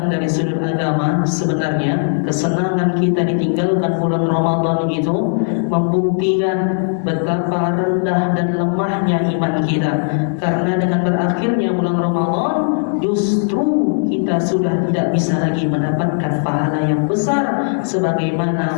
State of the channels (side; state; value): right; silent; digital silence